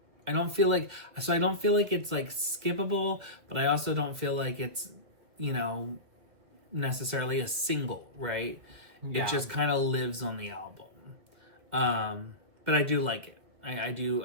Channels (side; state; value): left; late; 2.5 ms